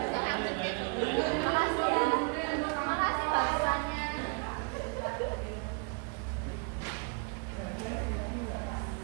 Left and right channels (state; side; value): quieter; left; 32.7 dB